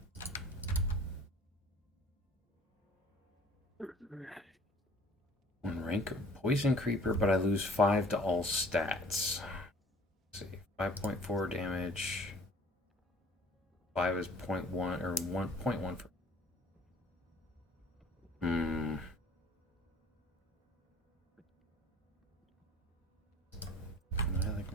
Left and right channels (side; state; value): both; normal; correlation 0.50